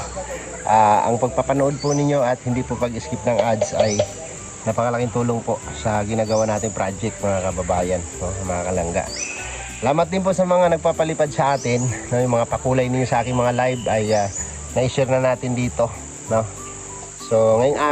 Ang pagpapanood po ninyo at hindi po pag-skip ng ads ay napakalaking tulong po sa ginagawa natin project, mga kababayan, mga kalangga. Salamat din po sa mga nagpapalipad sa atin, yung mga pakulay ninyo sa aking mga live ay na-share na natin dito, no? So ngayong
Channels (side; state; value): both; identical; correlation 1.00